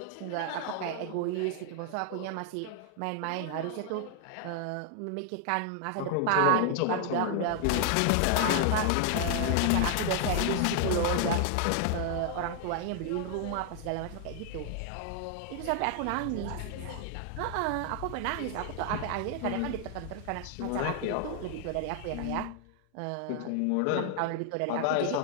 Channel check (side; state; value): both; different; correlation 0.00